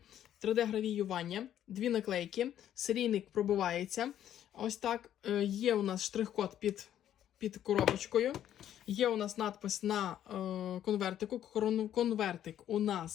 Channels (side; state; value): right; quieter; 10.9 dB